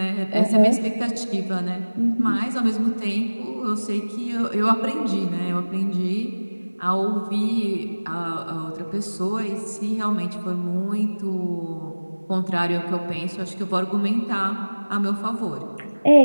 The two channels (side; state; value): both; inverted; correlation -1.00